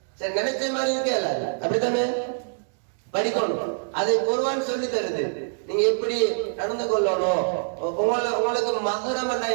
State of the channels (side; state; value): left; silent; digital silence